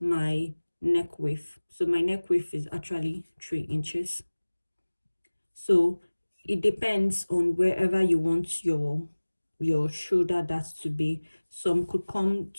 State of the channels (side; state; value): both; inverted; correlation -1.00